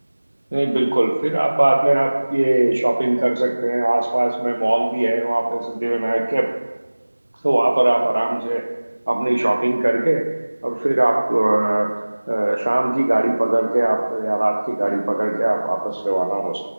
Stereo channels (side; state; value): both; inverted; correlation -1.00